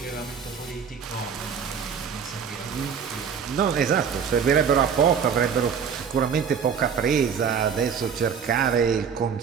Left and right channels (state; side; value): quieter; left; 7.0 dB